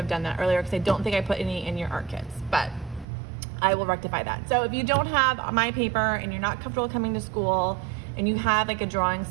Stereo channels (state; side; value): drops out; left; at 3.1 s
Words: done that earlier because I don't think I put any in your art kits, but I will rectify that. So if you don't have my paper and you're not comfortable coming to school and you have like a drawing